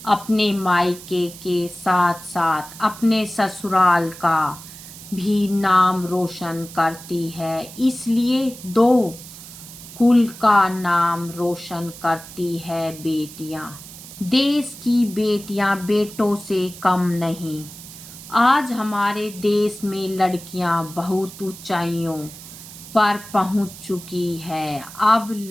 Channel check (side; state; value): right; noise; hiss, 16 dB below the sound